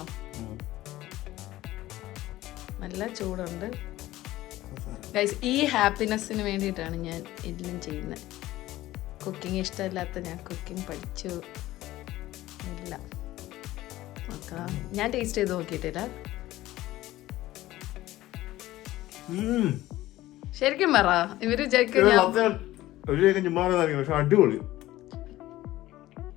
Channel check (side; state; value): right; quieter; 16.1 dB